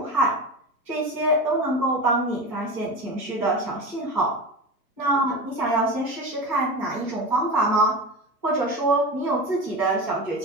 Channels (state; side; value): normal; both; correlation 0.27